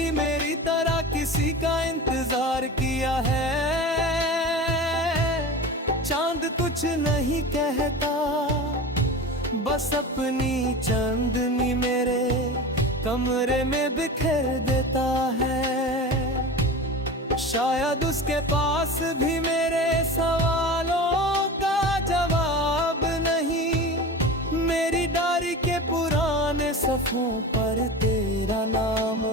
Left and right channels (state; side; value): normal; both; correlation 0.31